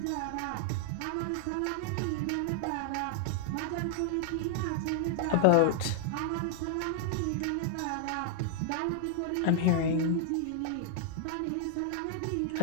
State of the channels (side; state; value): both; different; correlation -0.01